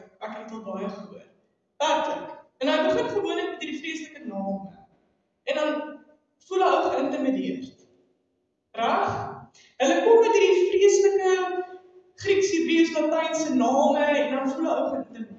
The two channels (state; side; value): identical; both; correlation 1.00